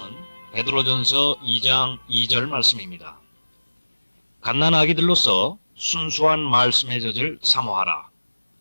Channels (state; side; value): inverted; both; correlation -1.00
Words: 베드로전서 2장 2절 말씀입니다. 갓난 아기들로서 순수한 말씀의 젖을 사모하라.